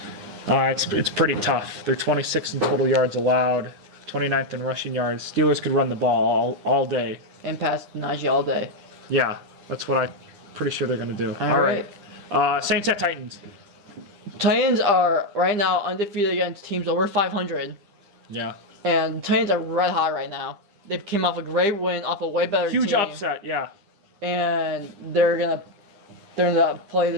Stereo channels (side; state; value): left; late; 10 ms